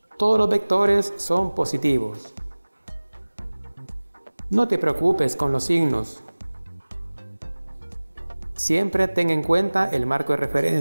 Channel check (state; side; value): inverted; both; correlation -1.00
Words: Todos los vectores son positivos. No te preocupes con los signos. Siempre ten en cuenta el marco de